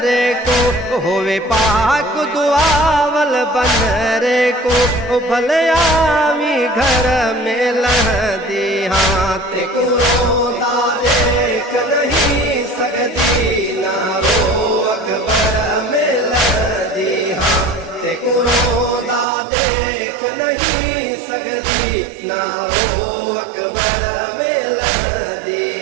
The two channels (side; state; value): left; drops out; at 19.2 s